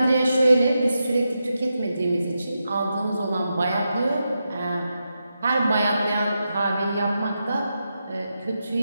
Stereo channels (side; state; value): both; inverted; correlation -0.87